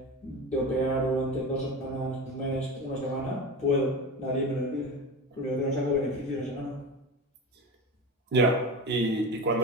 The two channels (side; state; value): both; normal; correlation 0.27